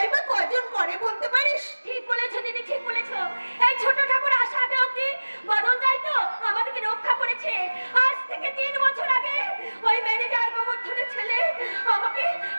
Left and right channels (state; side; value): inverted; both; correlation -1.00